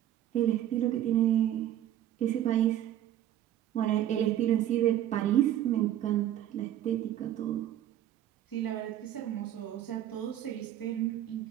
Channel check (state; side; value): quieter; left; 11.8 dB